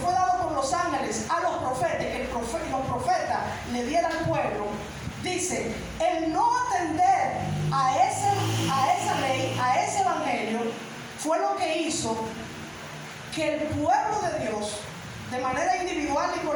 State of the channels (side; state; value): both; identical; correlation 1.00